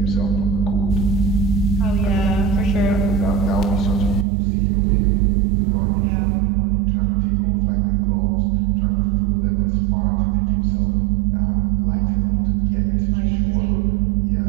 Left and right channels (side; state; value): left; drops out; at 4.2 s